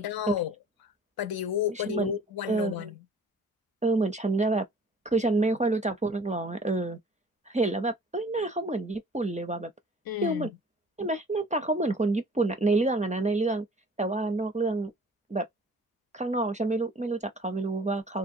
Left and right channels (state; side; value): normal; both; correlation 0.49